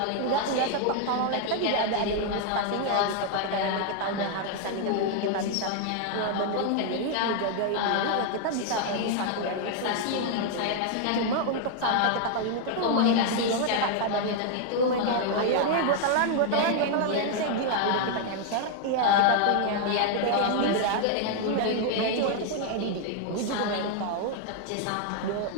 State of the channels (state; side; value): different; both; correlation 0.00